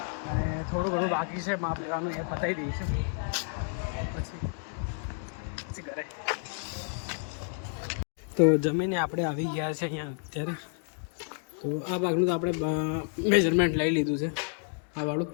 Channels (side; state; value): right; silent; 58 dB below the other